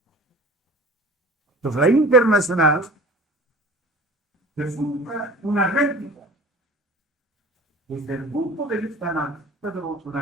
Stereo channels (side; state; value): both; normal; correlation 0.42